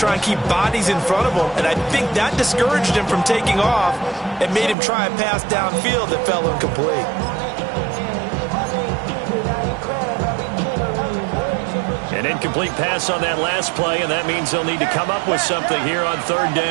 and keep bodies in front of them, and I think that discouraged him from taking off and made him try a pass downfield that fell incomplete. An incomplete pass on that last play, and that means they'll need to come up with something here on third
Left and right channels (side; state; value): left; drops out; at 4.8 s